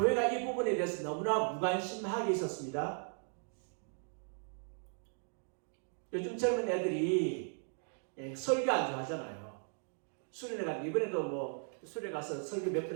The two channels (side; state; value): left; silent; 53 dB below the other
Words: 이 부분에 대해서 너무나 무관심하게 있었습니다. 요즘 젊은 애들이 설교 안 좋아하잖아요. 수련회 가서 이번에도 수련회 가서 설교 몇 번